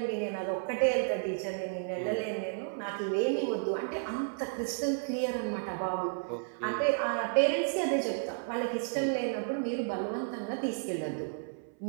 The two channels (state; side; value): silent; left; 56 dB below the other